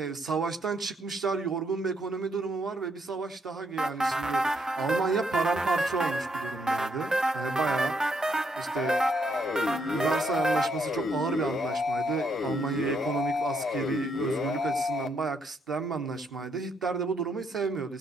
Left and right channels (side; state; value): both; normal; correlation 0.74